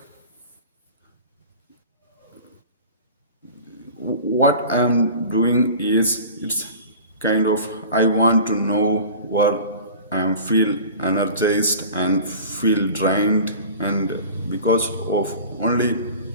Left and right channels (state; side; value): inverted; both; correlation -0.39